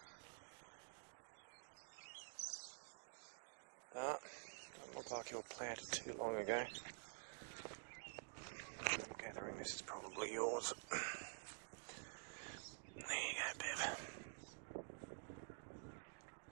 Doesn't look like you were planted too long ago. I'm gathering this is probably yours. There you go, Bev.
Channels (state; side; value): silent; left; digital silence